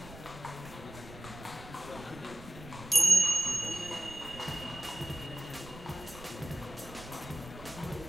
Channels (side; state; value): right; noise; rumble, 16 dB below the sound